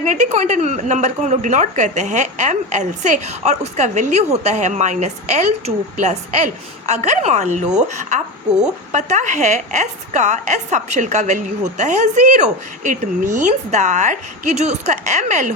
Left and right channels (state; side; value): normal; both; correlation 0.22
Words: क्वांटम नंबर को हम लोग डिनोट करते हैं ml से, और उसका वैल्यू होता है -L2 + L। अगर मान लो आपको पता है S सबशेल का वैल्यू होता है 0, इट मीन्स दैट कि जो उसका ml